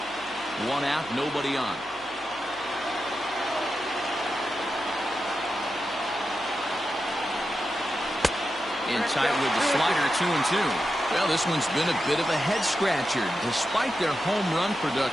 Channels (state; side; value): noise; left; hum, 26 dB below the sound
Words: 1 out, nobody on. In tight with the slider, 2-2. Well, this one's been a bit of a head scratcher despite their home run